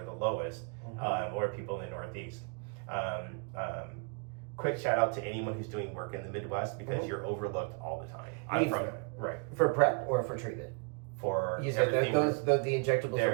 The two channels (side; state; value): left; quieter; 35.9 dB